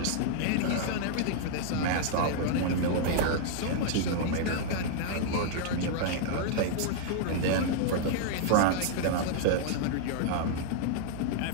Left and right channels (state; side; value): different; both; correlation -0.01